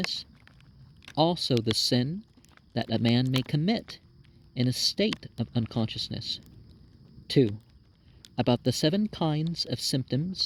Also the sin that a man may commit in a state of unconsciousness. 2. About the 7 kinds of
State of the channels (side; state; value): both; identical; correlation 1.00